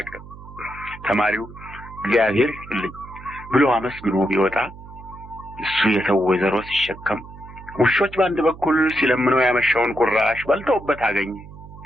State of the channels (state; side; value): noise; right; hum, 17 dB below the sound